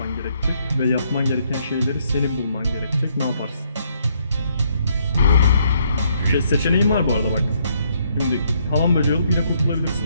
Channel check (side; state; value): both; inverted; correlation -0.70